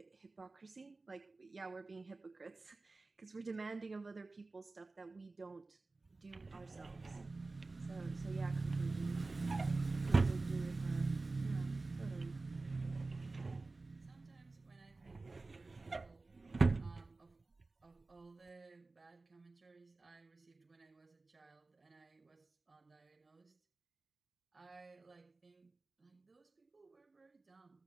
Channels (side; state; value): left; quieter; 3.5 dB